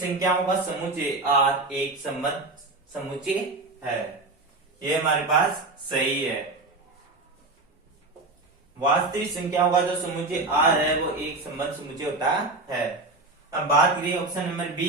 का समुच्चय आर एक सम्मत समुच्चय है, ये हमारे पास सही है। वास्तविक संख्याओं का जो समुच्चय आर है वो एक सम्मत समुच्चय होता है। अब बात करिए ऑप्शन नंबर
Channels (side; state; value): left; quieter; 3.2 dB